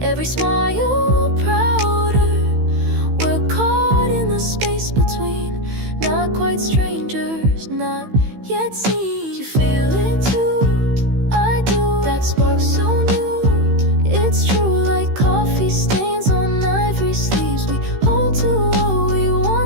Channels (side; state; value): left; late; 15 ms